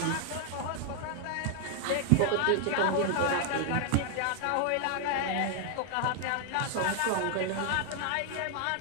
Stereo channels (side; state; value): both; different; correlation 0.00